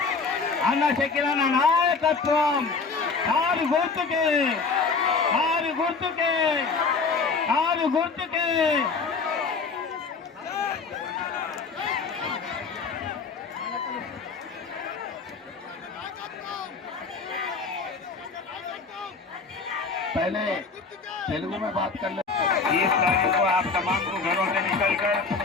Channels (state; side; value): quieter; right; 4.6 dB